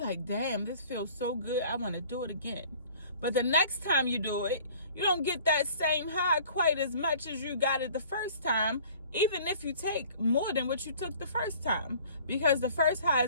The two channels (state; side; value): inverted; both; correlation -0.50